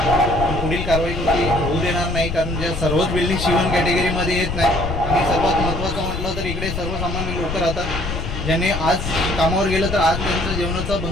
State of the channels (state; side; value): noise; left; rumble, 5 dB below the sound